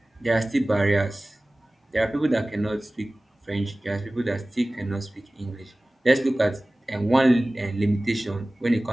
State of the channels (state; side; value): normal; both; correlation 0.98